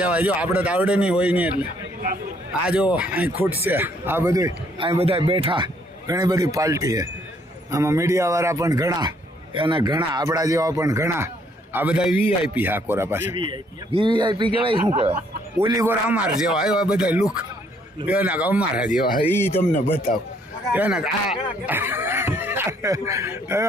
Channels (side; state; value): both; normal; correlation 0.67